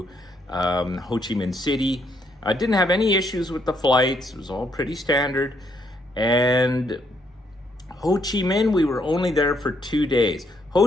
Ho Chi Minh City. I didn't have any issues with the flights. It was all pretty standard. And Ho Chi Minh, we were only there for 2 days. Ho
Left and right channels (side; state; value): both; normal; correlation 0.73